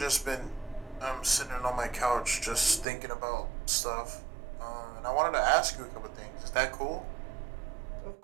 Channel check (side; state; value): left; drops out; at 2.9 s